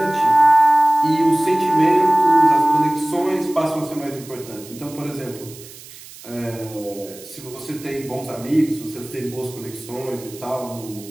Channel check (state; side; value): noise; right; hiss, 18 dB below the sound